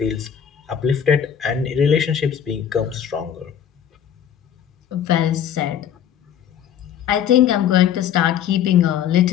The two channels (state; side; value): quieter; right; 9.1 dB